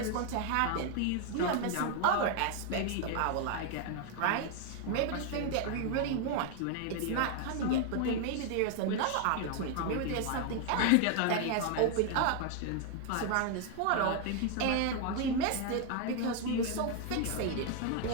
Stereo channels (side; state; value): both; different; correlation 0.00